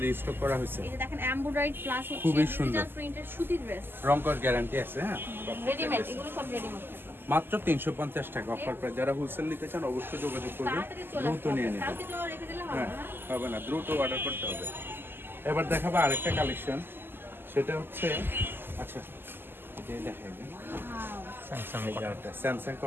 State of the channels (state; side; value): late; left; 0.099 ms